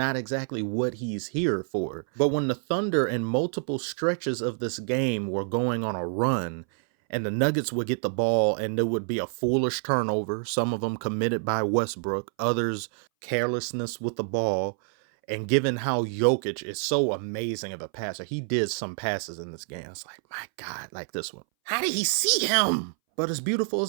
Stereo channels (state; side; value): silent; left; 60 dB below the other